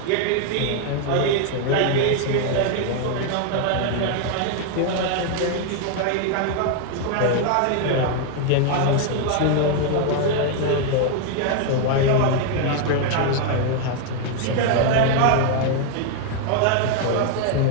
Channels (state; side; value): different; both; correlation 0.00